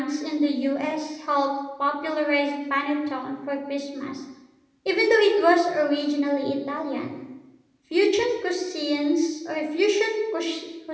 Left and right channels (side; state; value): both; identical; correlation 1.00